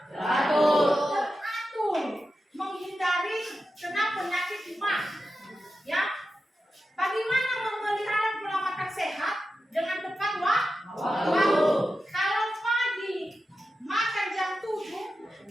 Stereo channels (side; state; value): both; normal; correlation 0.91